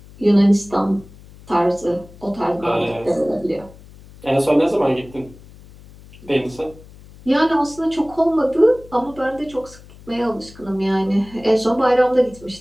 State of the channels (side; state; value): left; noise; hum, 21 dB below the sound